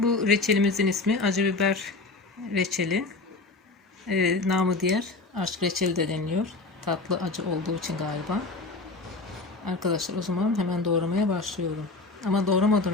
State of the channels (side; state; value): right; quieter; 3.5 dB